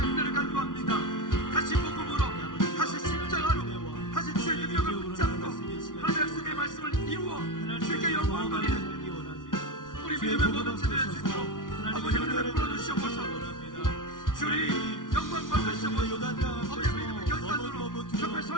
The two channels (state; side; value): late; right; 0.88 ms